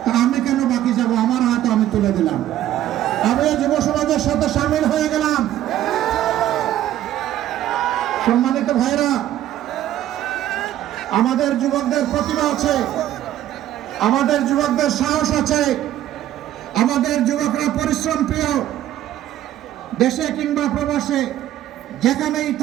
তা আমি কেন বাকি যাব? আমার হাত আমি তুলে দিলাম, আমি যুব সমাজের সাথে সামিল হয়ে গেলাম। সম্মানিত ভাইরা, আমাদের যুবকদের প্রতিভা আছে, আমাদের যুবকদের সাহস আছে, আমাদের যুবকরা পরিশ্রম প্রিয়। দেশে কিংবা প্রবাসে যেখানেই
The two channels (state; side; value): quieter; left; 12.7 dB